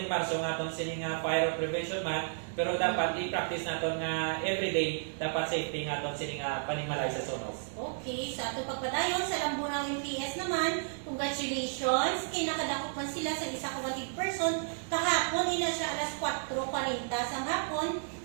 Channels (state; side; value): silent; left; digital silence